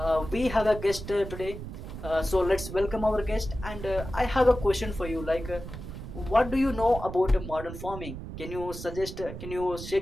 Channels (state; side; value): noise; right; rumble, 10 dB below the sound